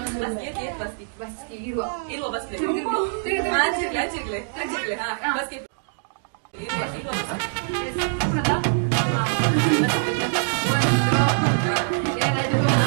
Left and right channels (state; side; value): silent; left; digital silence